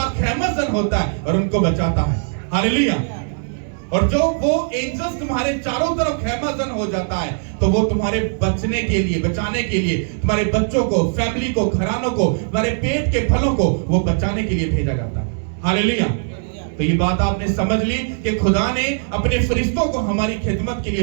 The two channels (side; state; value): left; silent; 66 dB below the other